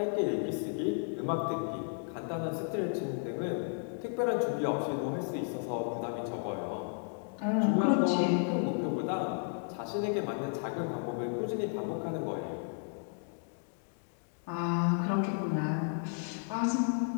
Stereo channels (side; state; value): right; silent; 56 dB below the other